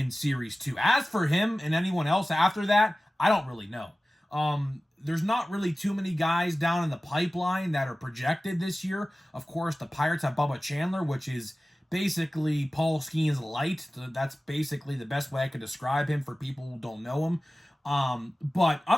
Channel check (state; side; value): normal; both; correlation 0.97